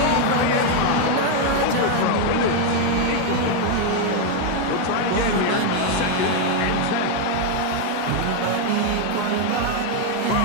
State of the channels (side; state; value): both; different; correlation 0.01